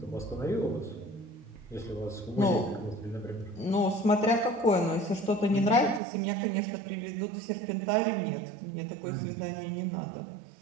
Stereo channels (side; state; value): left; drops out; at 6.0 s